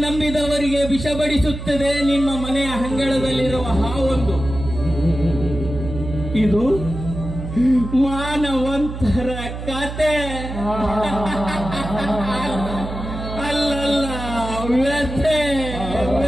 ನಂಬಿದವರಿಗೆ ವಿಷ ಬಡಿಸುತ್ತದೆ ನಿಮ್ಮ ಮನೆಯ ಅಂಗಳದಲ್ಲಿರುವ ಹಾವೊಂದು. ಇದು ಮಾನವಂತರ ಕತೆ ಅಲ್ಲಲ್ಲ, ವ್ಯಥೆ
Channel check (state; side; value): noise; right; hum, 8 dB below the sound